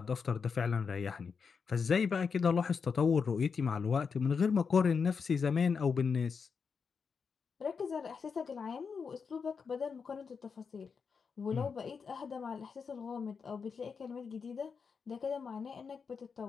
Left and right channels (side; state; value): right; quieter; 5.7 dB